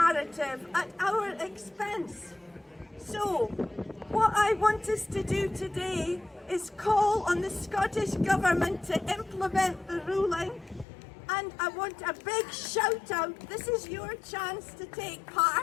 at our expense? So, what I want us to do today is call on the Scottish Government to implement the ruling, and I want a big shout out. This is your chance to take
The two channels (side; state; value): right; drops out; at 10.9 s